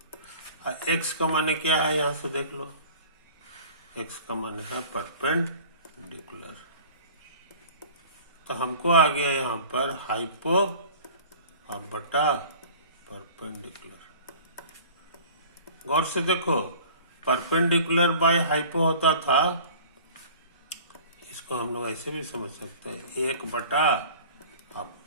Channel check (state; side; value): inverted; both; correlation -0.44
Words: x का माने क्या है, यहां से देख लो, x का माने है परपेंडिकुलर। तो हमको आ गया यहाँ पर हाइपो और बटा परपेंडिकुलर। गौर से देखो, परपेंडिकुलर बाय हाइपो होता था, इसको हम लोग ऐसे भी समझ सकते हैं, 1 बटा अब